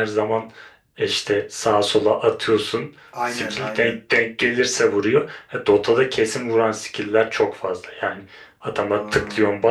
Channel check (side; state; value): both; identical; correlation 1.00